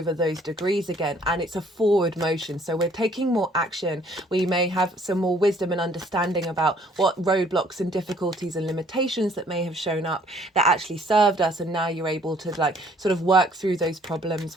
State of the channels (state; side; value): normal; both; correlation 0.60